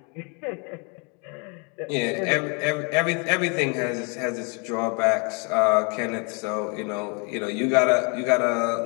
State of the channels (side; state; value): right; quieter; 34.5 dB